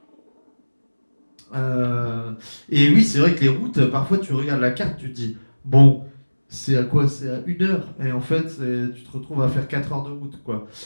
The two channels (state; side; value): inverted; both; correlation -1.00